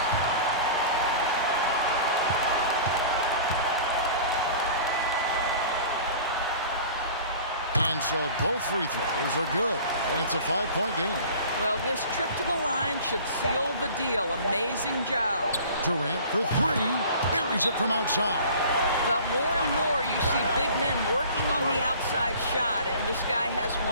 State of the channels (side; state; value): both; inverted; correlation -0.44